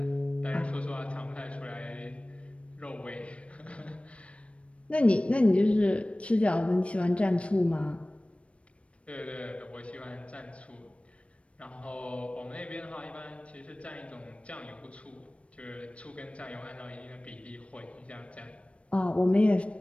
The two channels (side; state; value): right; late; 0.062 ms